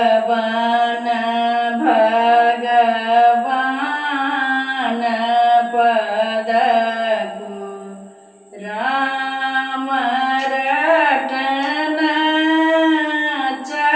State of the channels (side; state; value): both; identical; correlation 1.00